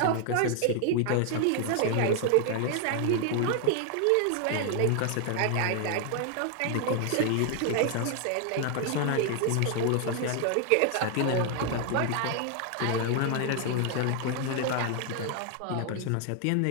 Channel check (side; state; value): both; different; correlation 0.00